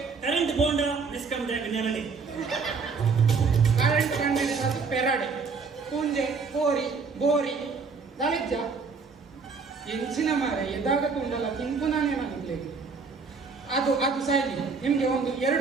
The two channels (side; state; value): left; quieter; 4.9 dB